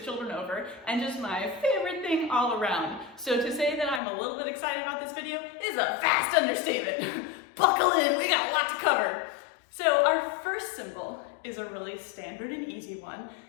children over, and just my favorite thing all around. So to say that I'm a little bit excited about this video is a vast understatement. Buckle in, we got a lot to cover. So our first symbol is a really standard and easy one.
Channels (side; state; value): right; drops out; at 4.0 s